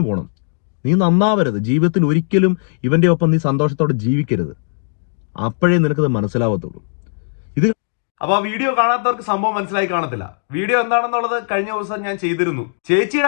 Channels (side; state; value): right; silent; digital silence